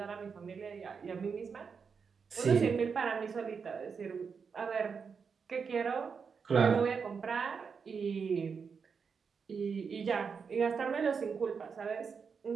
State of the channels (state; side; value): quieter; left; 5.8 dB